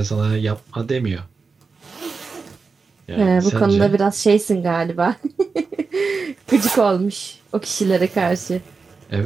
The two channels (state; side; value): quieter; left; 4.6 dB